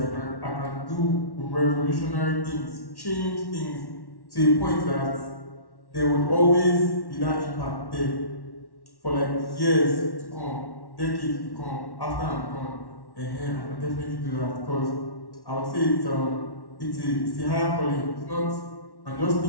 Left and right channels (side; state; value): right; late; 1.1 ms